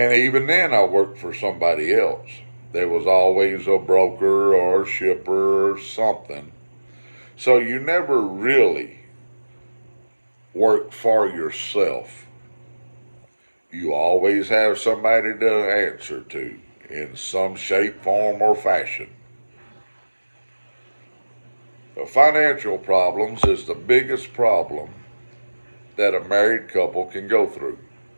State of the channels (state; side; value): inverted; both; correlation -1.00